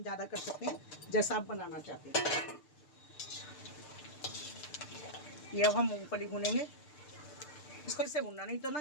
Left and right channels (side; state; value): right; late; 6.7 ms